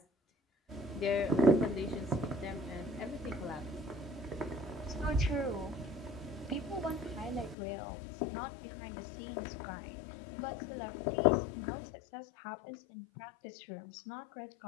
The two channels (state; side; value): drops out; right; at 7.6 s